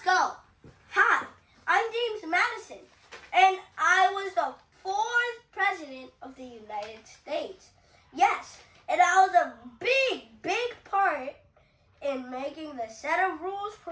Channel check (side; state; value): both; identical; correlation 1.00